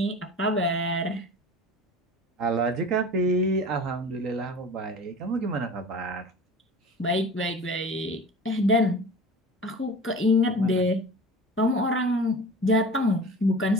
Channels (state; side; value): normal; both; correlation 0.38